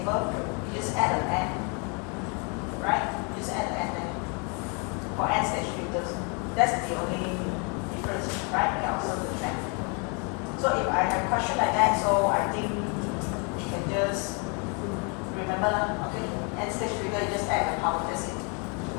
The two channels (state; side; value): quieter; right; 34.9 dB